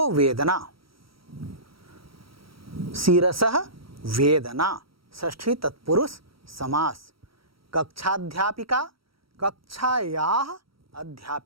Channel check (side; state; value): left; late; 0.75 ms